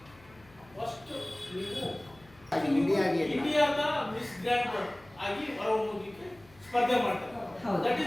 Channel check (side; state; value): left; noise; hum, 26 dB below the sound